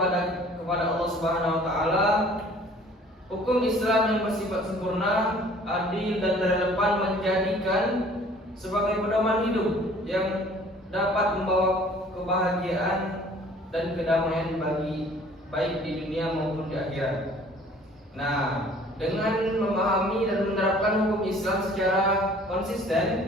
Allah Subhanahu wa taala. Hukum Islam yang bersifat sempurna, adil, dan relevan menjadikan sebagai pedoman hidup yang dapat membawa kebahagiaan dan kedamaian bagi baik di dunia maupun di akhirat. Nah, dengan memahami dan menerapkan hukum Islam secara konsisten,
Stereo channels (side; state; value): both; normal; correlation 0.53